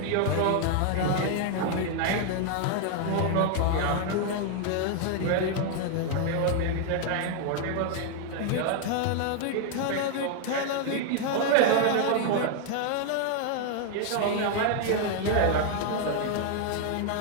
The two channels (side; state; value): both; different; correlation 0.00